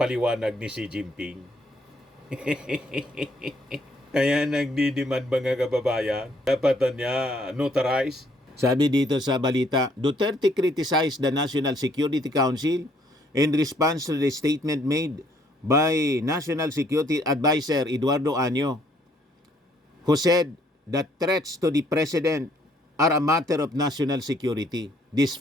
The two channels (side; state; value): both; normal; correlation 0.66